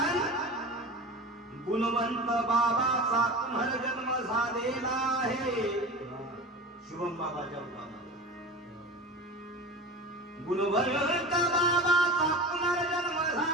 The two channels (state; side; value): normal; both; correlation 0.31